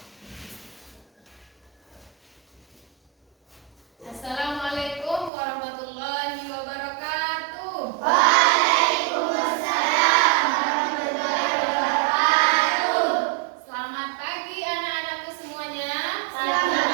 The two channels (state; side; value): drops out; left; at 5.3 s